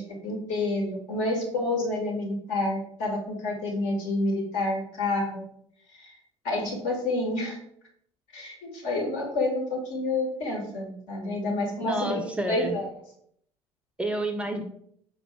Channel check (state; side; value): normal; both; correlation 0.44